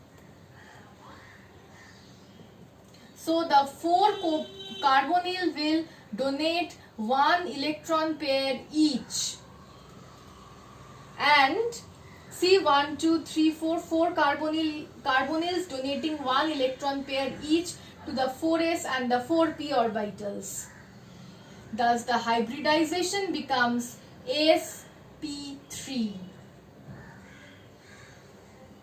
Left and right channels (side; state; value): both; identical; correlation 1.00